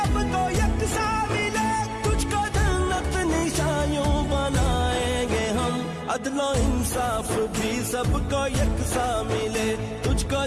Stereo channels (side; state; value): both; identical; correlation 1.00